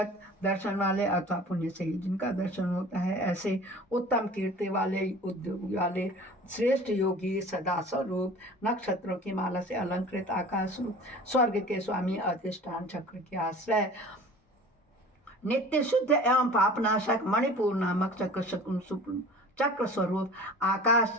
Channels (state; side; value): normal; both; correlation 0.42